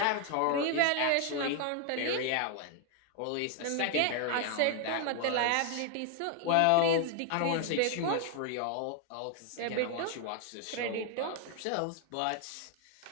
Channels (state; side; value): different; both; correlation 0.00